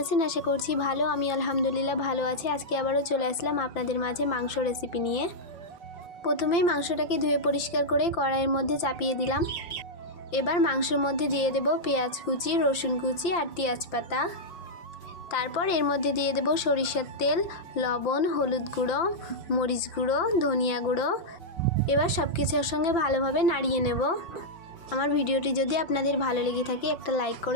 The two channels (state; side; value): late; right; 5.9 ms